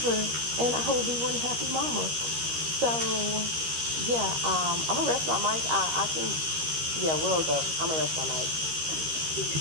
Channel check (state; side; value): late; left; 13 ms